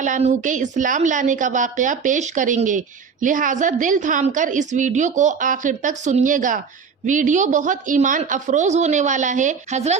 عنہ کے اسلام لانے کا واقعہ پیش کریں گے، لہٰذا دل تھام کر اس ویڈیو کو آخر تک سنیے گا۔ ویڈیو بہت ایمان افروز ہونے والا ہے۔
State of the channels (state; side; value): quieter; left; 5.9 dB